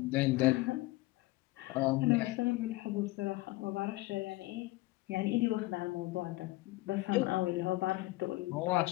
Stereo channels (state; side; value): quieter; right; 19.9 dB